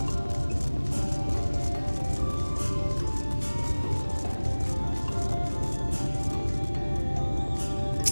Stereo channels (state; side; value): inverted; both; correlation -1.00